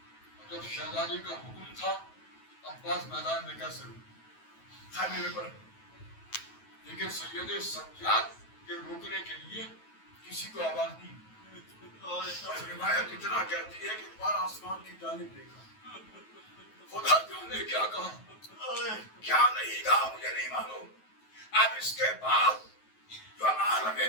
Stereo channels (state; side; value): late; right; 9.2 ms